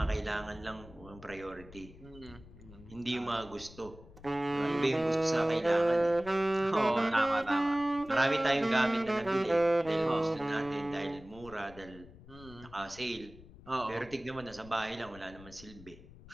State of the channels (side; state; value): left; noise; rumble, 19 dB below the sound